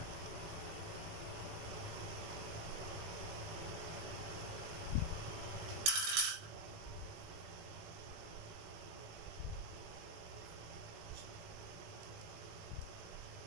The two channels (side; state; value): left; late; 18 ms